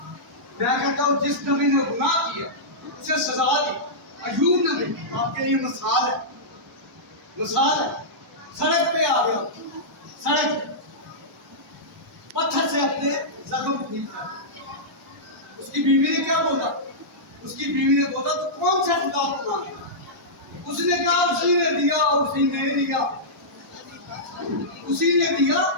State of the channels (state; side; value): normal; both; correlation -0.14